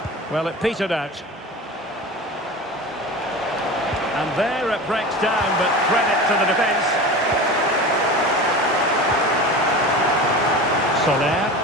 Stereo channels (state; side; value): normal; both; correlation 0.32